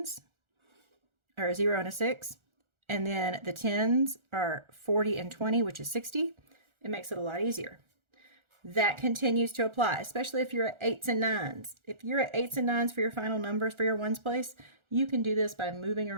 are a 0 and a 6. And then the 10s are 40 and 20, which is 60. It makes it a lot easier. That continues to apply, especially if you're at 8s and 9s. If you're at 8s and 9s for your final numbers for your ones place, you can do this by moving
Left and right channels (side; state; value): left; late; 1.4 ms